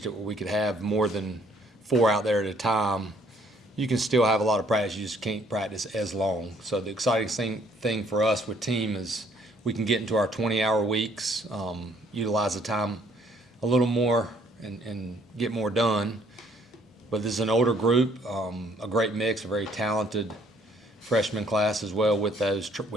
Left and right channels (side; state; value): both; normal; correlation 0.63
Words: it where we could have more than 4 out there at a time, you can still have a lot of practice. You just can't practice as long. So the exciting thing for us with team is we can get into our 20-hour weeks, utilize the time a little more, and get more done. But this is an older group, a great mix, a very talented freshman class as well with